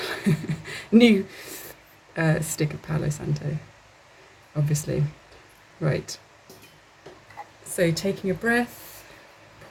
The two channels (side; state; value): both; identical; correlation 1.00